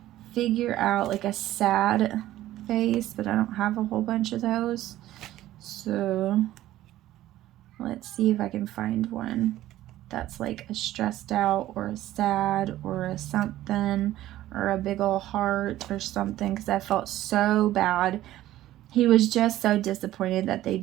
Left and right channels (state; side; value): quieter; left; 14.4 dB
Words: figure out like a sad face, but I don't have a whole bunch of those. So let's see if I can find one that's like a stressed out or a sad or a something, or a big old heart or something, because I felt so bad. He was just so disappointed that they